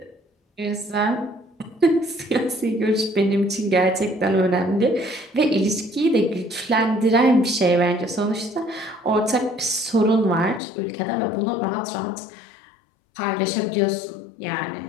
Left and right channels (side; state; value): right; drops out; at 10.6 s